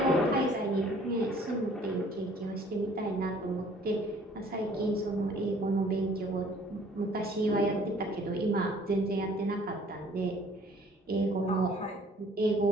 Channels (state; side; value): normal; both; correlation 0.56